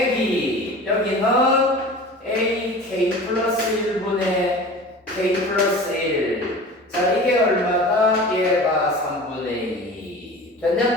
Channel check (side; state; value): both; normal; correlation 0.38